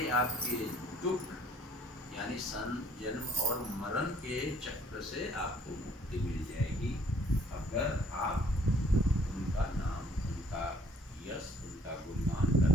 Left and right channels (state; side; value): normal; both; correlation 0.58